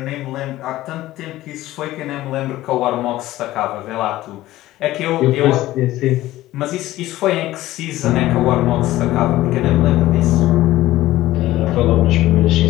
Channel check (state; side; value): quieter; right; 15.9 dB